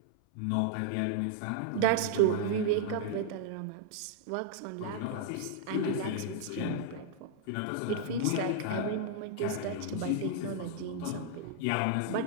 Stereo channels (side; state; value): both; different; correlation -0.01